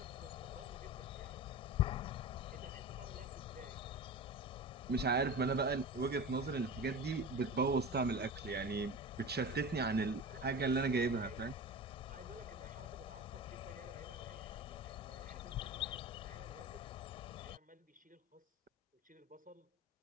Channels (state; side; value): normal; both; correlation 0.30